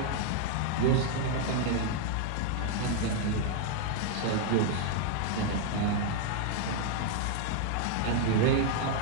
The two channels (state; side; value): different; both; correlation 0.00